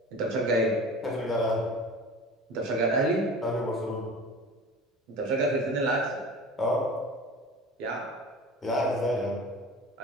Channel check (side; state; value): both; normal; correlation 0.37